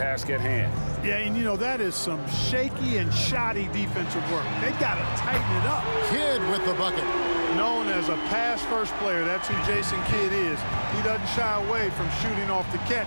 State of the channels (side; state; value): both; inverted; correlation -1.00